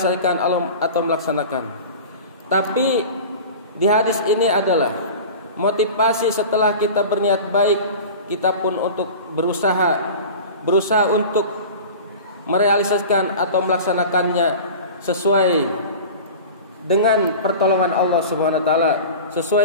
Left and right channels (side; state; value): both; inverted; correlation -0.35